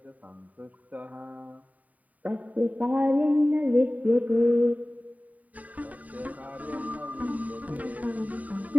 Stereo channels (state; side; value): late; left; 0.072 ms